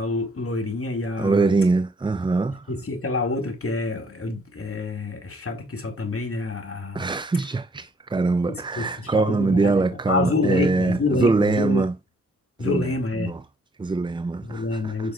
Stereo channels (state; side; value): normal; both; correlation 0.65